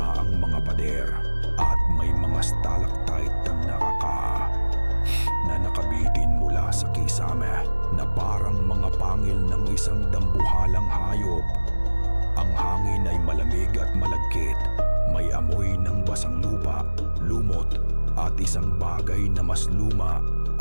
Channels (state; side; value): inverted; both; correlation -1.00